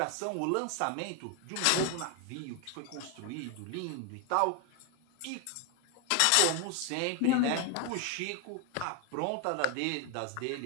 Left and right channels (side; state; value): both; different; correlation 0.01